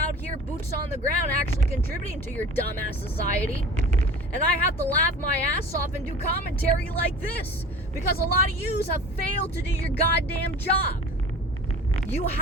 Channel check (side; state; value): both; normal; correlation 0.40